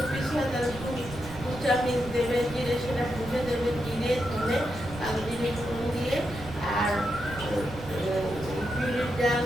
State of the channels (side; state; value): right; noise; rumble, 13 dB below the sound